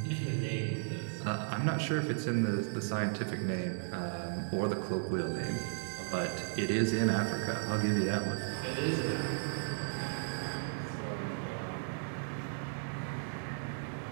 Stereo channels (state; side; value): silent; left; digital silence